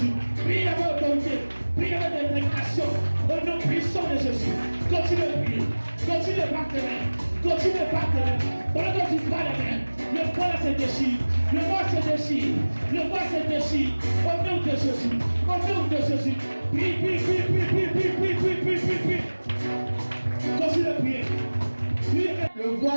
Prie avec autorité, prie avec détermination. Au nom puissant de Jésus. Continue de prier, continue de battre les mains, continue de battre les mains. Pendant que tu bats les mains, le voile se déchire, le voile se déchire, le voile se déchire. Au nom de Jésus, au nom de Jésus. Prie. Continue de prier. Le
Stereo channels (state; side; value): inverted; both; correlation -1.00